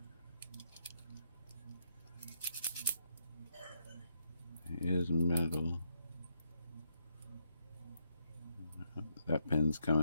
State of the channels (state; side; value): inverted; both; correlation -0.79